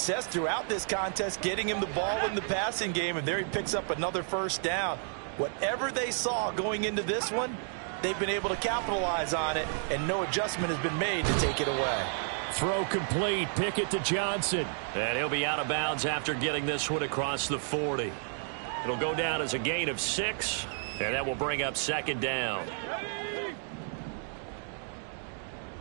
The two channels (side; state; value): left; silent; 57 dB below the other